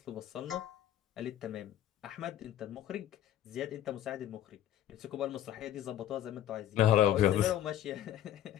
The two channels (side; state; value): right; quieter; 11.8 dB